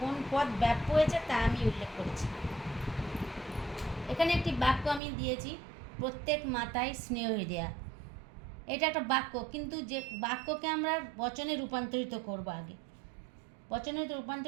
কোন পদ ব্যাপ্য হয়েছে তা আমি উল্লেখ করেছি। এখানে একটি বাক্য আমি দিয়েছি, প্রত্যেক মাতায় স্নেহ দেয়া। এটা একটা বাক্য, কিন্তু যে বাক্যকে আমরা বচনে রূপান্তরিত করব, আগে বচনে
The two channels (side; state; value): left; drops out; at 5.0 s